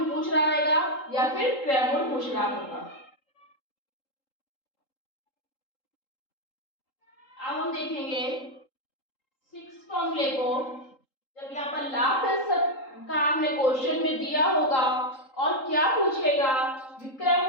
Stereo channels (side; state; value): right; late; 3.8 ms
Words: पूछ रहा रहेगा या फिर क्रय मूल्य पूछ रहा होगा। अब हम देखेंगे सिक्स फॉर्मूले को। जब यहाँ पर लाभ प्रतिशत का हमने क्वेश्चन में दिया होगा और क्या पूछेगा, विक्रय